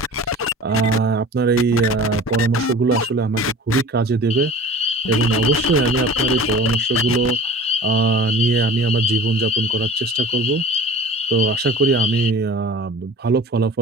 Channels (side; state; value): both; normal; correlation 0.41